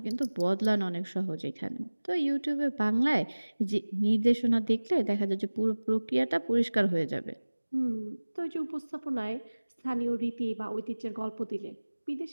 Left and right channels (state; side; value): inverted; both; correlation -1.00